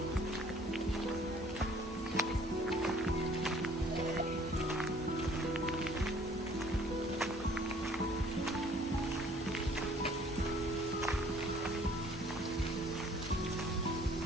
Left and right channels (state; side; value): normal; both; correlation 0.56